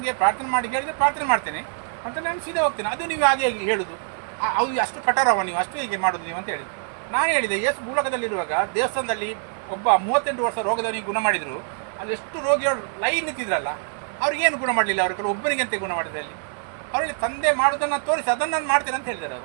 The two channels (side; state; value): left; silent; 62 dB below the other